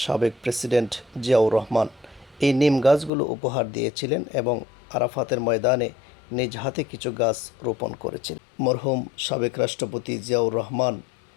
সাবেক প্রেসিডেন্ট জিয়াউর রহমান। এই নিম গাছগুলো উপহার দিয়েছিলেন এবং আরাফাতের ময়দানে নিজ হাতে কিছু গাছ রোপণ করেছিলেন। মরহুম সাবেক রাষ্ট্রপতি জিয়াউর রহমান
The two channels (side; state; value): right; drops out; at 3.1 s